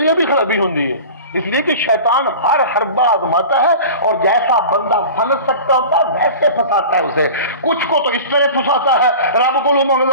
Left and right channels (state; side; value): inverted; both; correlation -0.37